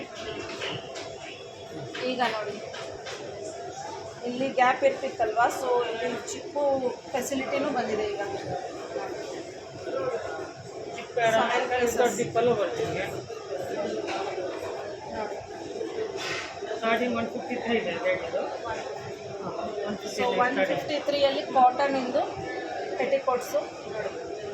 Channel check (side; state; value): both; identical; correlation 1.00